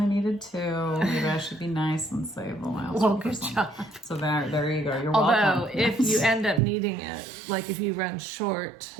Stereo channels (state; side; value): drops out; left; at 6.6 s